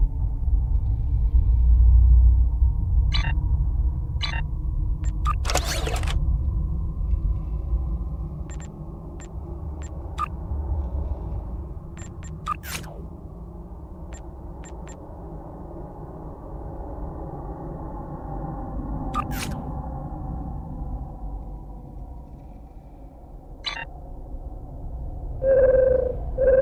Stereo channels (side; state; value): both; identical; correlation 1.00